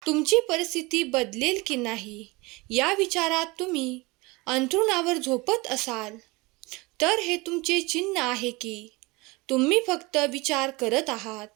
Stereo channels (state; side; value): quieter; left; 24.1 dB